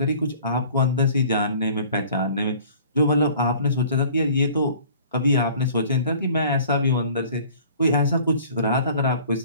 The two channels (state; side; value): inverted; both; correlation -0.50